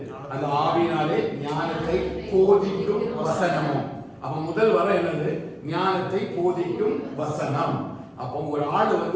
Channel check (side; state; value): both; identical; correlation 1.00